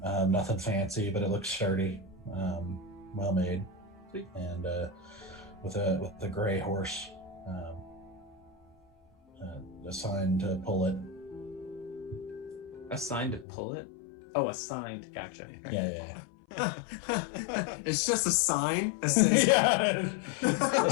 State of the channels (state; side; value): drops out; right; at 13.5 s